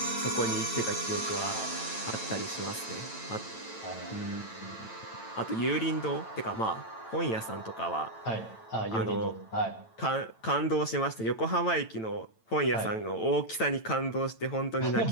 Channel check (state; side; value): late; right; 9.0 ms